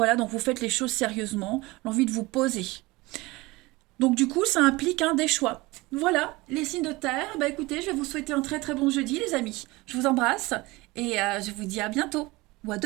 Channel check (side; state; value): left; quieter; 21.9 dB